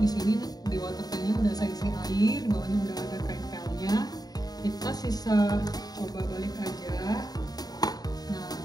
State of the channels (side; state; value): right; late; 0.19 ms